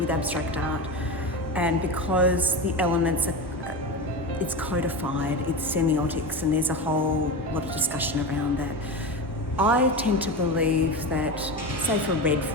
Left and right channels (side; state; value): both; normal; correlation 0.22